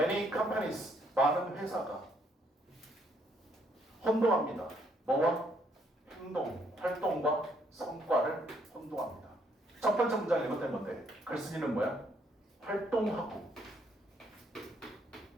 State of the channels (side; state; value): both; normal; correlation 0.69